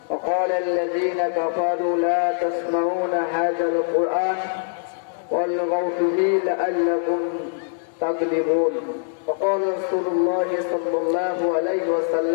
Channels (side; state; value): right; silent; digital silence